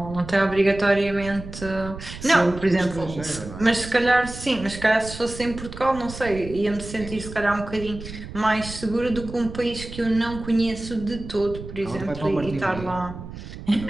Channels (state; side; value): noise; right; rumble, 12 dB below the sound